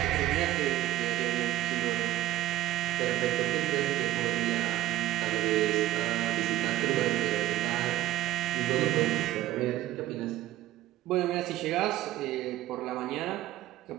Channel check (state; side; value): quieter; left; 14.8 dB